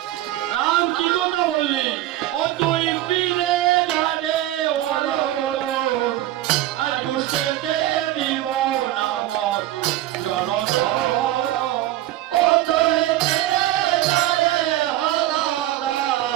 রাম কি কথা বললি? ও তুই ফিরে যারে আজ ঘুষতে দিব না মর জলধর। ও তুই ফিরে যারে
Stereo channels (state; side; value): quieter; left; 14.5 dB